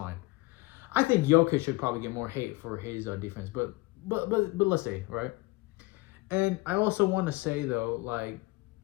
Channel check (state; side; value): quieter; right; 22.3 dB